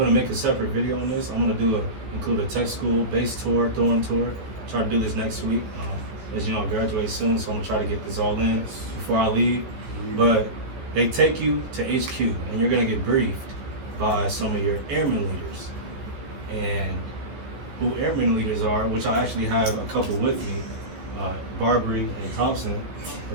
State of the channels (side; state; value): left; late; 14 ms